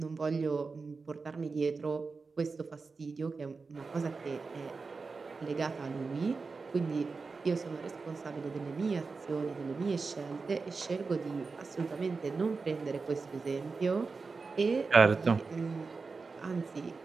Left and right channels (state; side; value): quieter; left; 4.4 dB